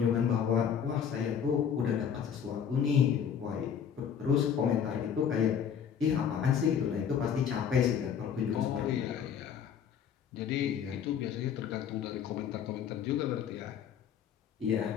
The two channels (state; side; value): quieter; right; 7.9 dB